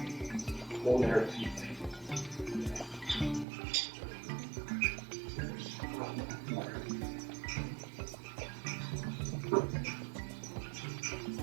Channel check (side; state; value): left; drops out; at 3.5 s